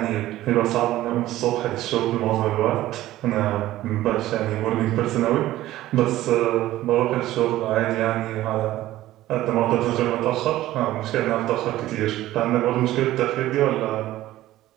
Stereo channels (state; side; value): quieter; left; 15.1 dB